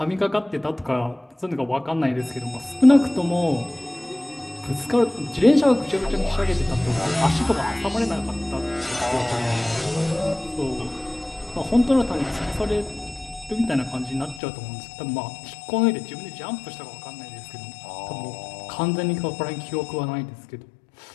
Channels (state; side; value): drops out; right; at 14.4 s